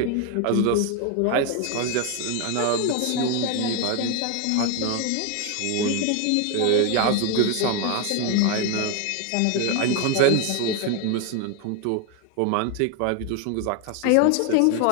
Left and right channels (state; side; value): different; both; correlation 0.01